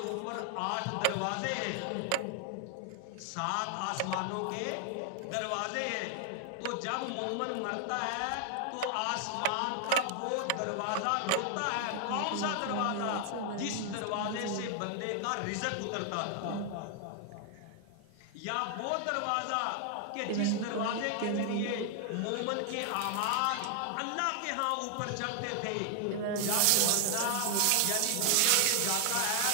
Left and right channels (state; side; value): different; both; correlation 0.00